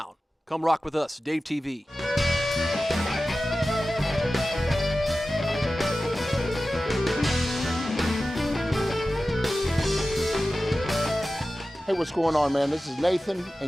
Come rock with us, DaveTV. Hey, what's going on, man? This is Nathan,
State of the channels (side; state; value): both; normal; correlation 0.95